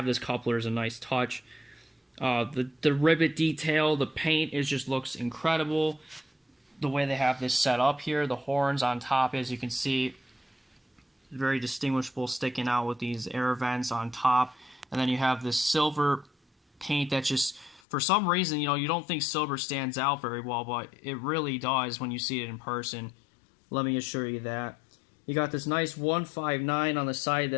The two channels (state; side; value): drops out; right; at 17.8 s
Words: this coupler is a nice touch. The rivet detail, the paint just looks incredible. The way they have this set up here, the horns on top, as you can see, very distinguishable, sticking out with these air vents on top. And then you have this silver paint that just, for some reason, you don't think silver stands out very well, but it really does when you see it in person. Let me assure you that. You got this nice 159 on the side